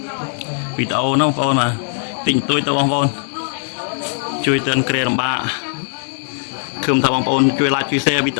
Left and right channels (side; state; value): right; silent; digital silence